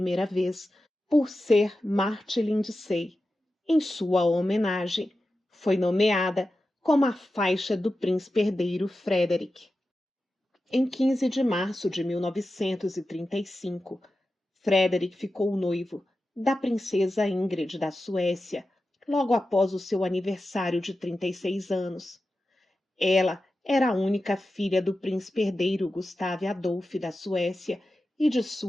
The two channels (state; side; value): normal; both; correlation 0.92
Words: vez por Sir Martin Lindsay. Em sua homenagem, foi nomeada como a faixa do príncipe herdeiro Frederick. Em 15 de março de 1935, Frederick ficou noivo da princesa Ingrid da Suécia, logo após o seu aniversário de 36 anos. Ela era a única filha do príncipe herdeiro Gustave Adolf da Suécia e de